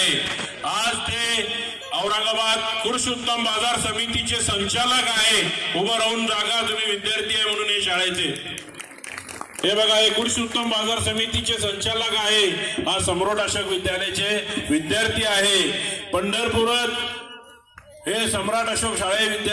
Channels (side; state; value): both; identical; correlation 1.00